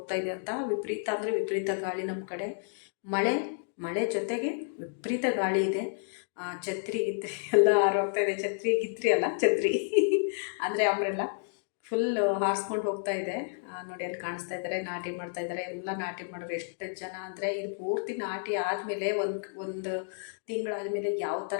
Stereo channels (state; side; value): silent; right; digital silence